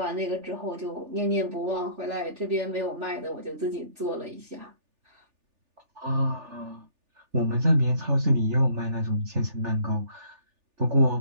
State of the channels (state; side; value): late; left; 3.4 ms